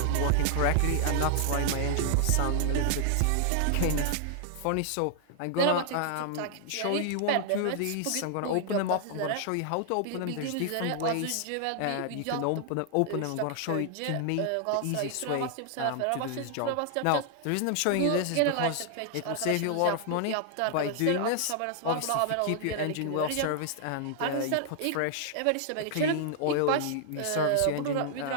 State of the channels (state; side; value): different; both; correlation 0.00